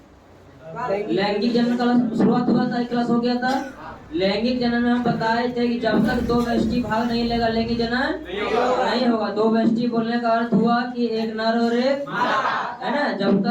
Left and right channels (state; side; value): identical; both; correlation 1.00